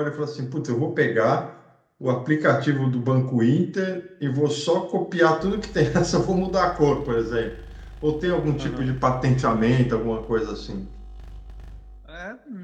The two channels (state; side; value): identical; both; correlation 1.00